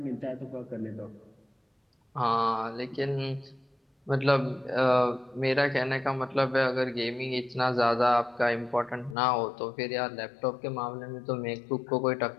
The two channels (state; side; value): drops out; right; at 9.2 s